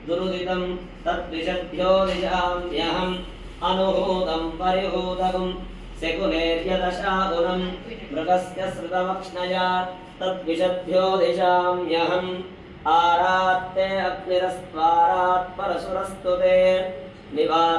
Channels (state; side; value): identical; both; correlation 1.00